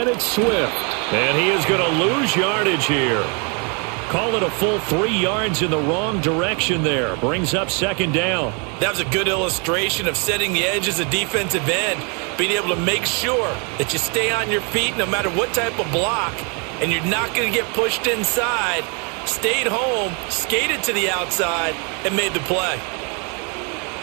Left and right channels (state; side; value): quieter; left; 34.8 dB